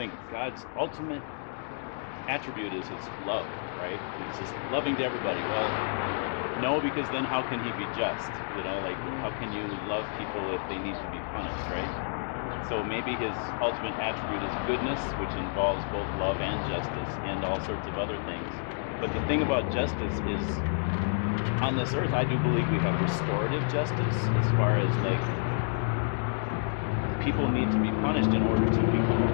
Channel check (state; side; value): silent; right; digital silence